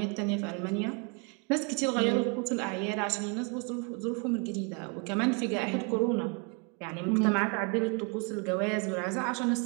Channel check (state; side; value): quieter; left; 35.0 dB